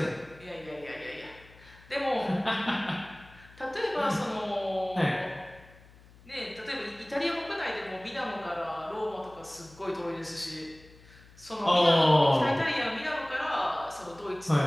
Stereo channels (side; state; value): left; noise; hum, 24 dB below the sound